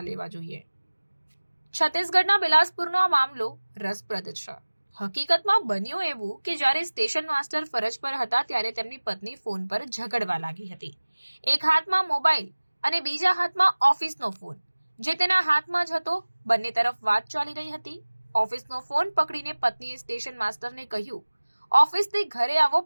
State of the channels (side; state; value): both; inverted; correlation -1.00